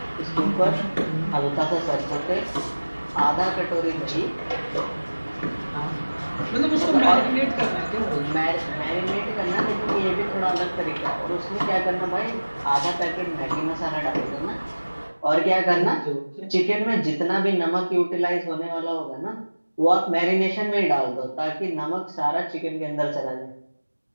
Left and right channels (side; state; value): both; inverted; correlation -1.00